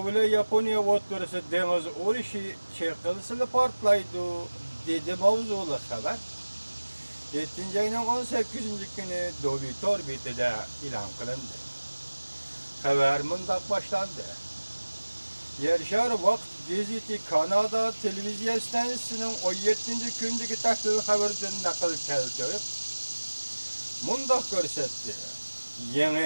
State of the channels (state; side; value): inverted; both; correlation -1.00